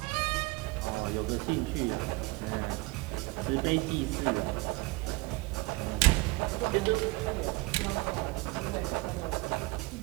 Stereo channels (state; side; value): quieter; left; 23.9 dB